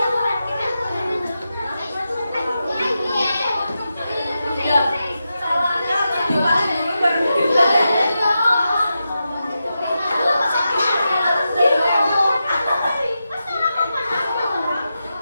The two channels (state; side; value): inverted; both; correlation -0.89